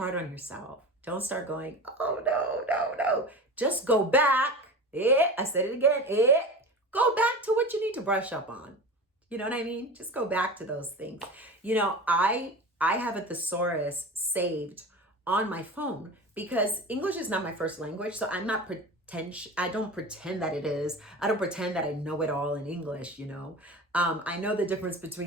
on yourself. Don't start going, oh, no. Just go back. I said it again. Go back to what you need to brush up on. You know what I mean? Just go back to those things. I have a thesaurus saved on my phone because English is not my first language, so I don't pretend that it is. I don't pretend that I know it all in English, I know the difference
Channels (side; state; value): both; normal; correlation 0.31